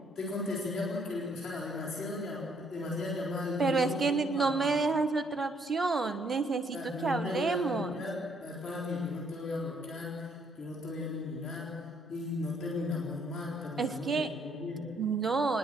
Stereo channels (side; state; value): both; normal; correlation 0.68